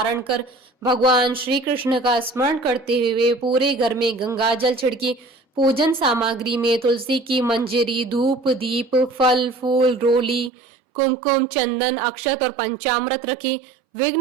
कर भगवान श्री कृष्ण का स्मरण करते हुए पूरे घर में गंगा जल छिड़के। पूजन सामग्री में तुलसी की मंजरी, धूप, दीप, फल फूल, रोली, कुमकुम, चंदन, अक्षत और पंचामृत रखें।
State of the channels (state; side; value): drops out; left; at 10.5 s